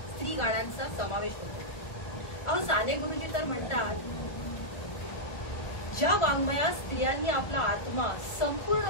स्त्री गाण्यांचा समावेश होतो. अहो साने गुरुजी तर म्हणतात, ज्या वाङ्मयात स्त्रियांनी आपला आत्मा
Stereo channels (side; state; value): right; late; 1.4 ms